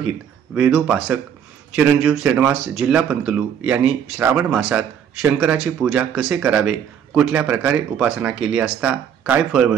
वेदोपासक चिरंजीव श्रीनिवास जिल्हा पंतलू यांनी श्रावण मासात शंकराची पूजा कसे करावे, कुठल्या प्रकारे उपासना केली असता काय फळ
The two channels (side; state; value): left; quieter; 8.5 dB